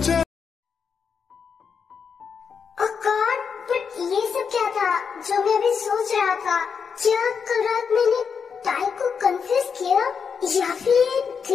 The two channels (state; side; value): quieter; right; 6.3 dB